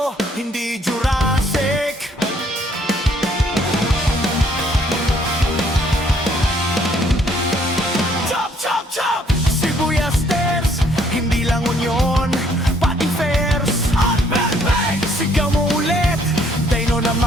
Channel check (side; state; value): both; normal; correlation 0.65